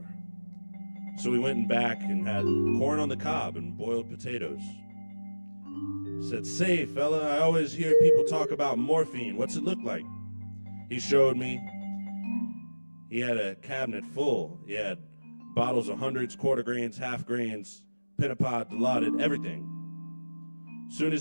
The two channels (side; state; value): both; inverted; correlation -1.00